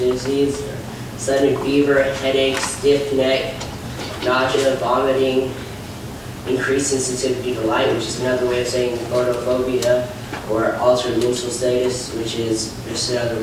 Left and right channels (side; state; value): both; identical; correlation 1.00